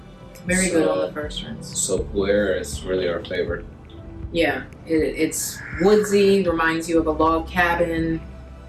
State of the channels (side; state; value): both; identical; correlation 1.00